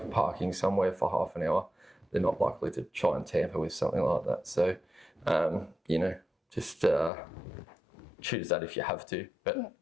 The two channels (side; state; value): right; drops out; at 7.1 s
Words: parking somewhere for half an hour, they're not likely to try and tamper with something like that. So, just choose that if you have to. But